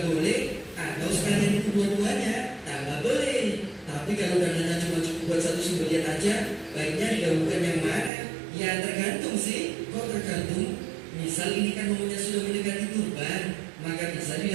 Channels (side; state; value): left; drops out; at 8.1 s